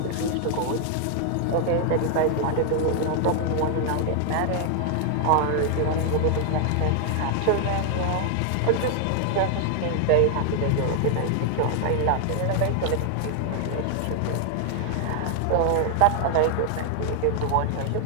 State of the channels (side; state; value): both; different; correlation 0.00